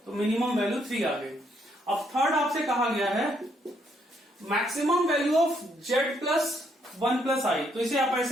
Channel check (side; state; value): both; normal; correlation 0.72